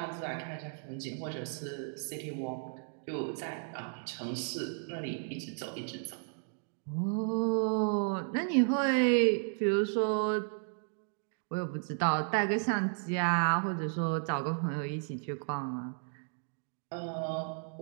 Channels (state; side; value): silent; left; 55 dB below the other